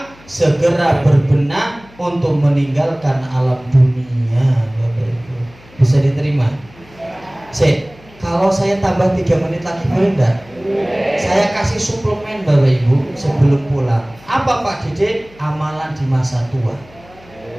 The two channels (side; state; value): left; noise; hum, 25 dB below the sound